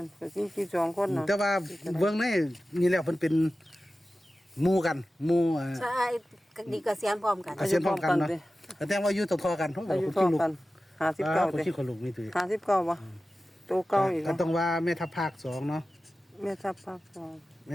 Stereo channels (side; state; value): both; normal; correlation 0.95